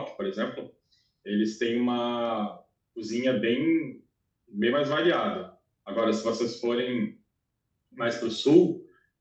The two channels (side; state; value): both; identical; correlation 1.00